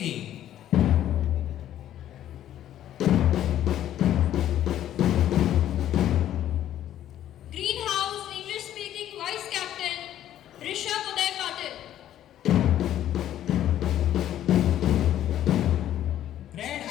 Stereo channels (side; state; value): right; quieter; 11.8 dB